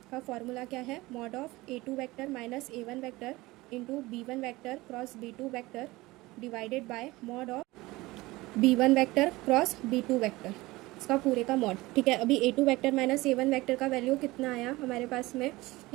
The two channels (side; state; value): left; quieter; 20.2 dB